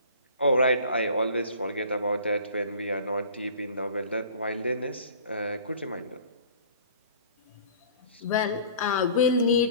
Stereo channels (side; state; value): both; inverted; correlation -0.46